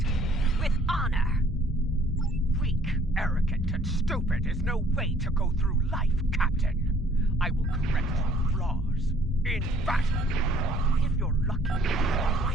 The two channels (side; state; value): both; normal; correlation 0.59